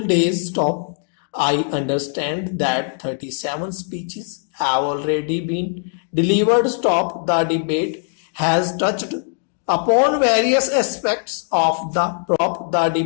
days. Stop. I understand that 37 speeches have already been delivered. Stop. The debate has touched upon various aspects of the prop. The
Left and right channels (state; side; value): silent; right; 58 dB below the other